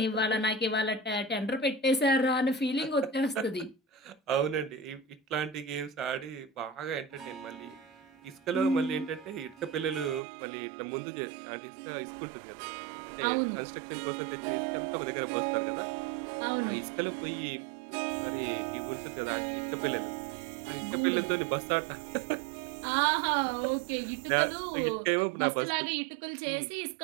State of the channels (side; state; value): left; drops out; at 10.2 s